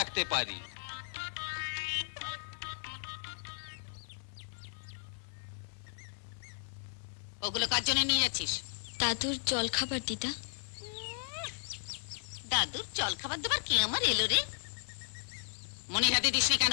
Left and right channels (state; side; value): silent; right; 54 dB below the other